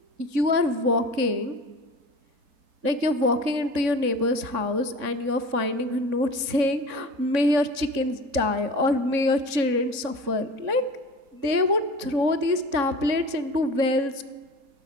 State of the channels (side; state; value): left; late; 3.6 ms